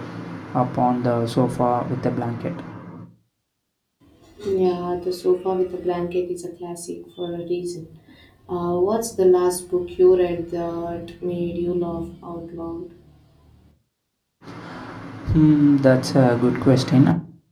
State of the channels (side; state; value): both; identical; correlation 1.00